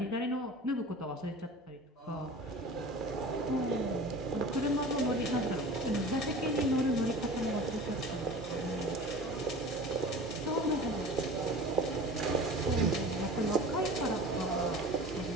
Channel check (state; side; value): normal; both; correlation 0.39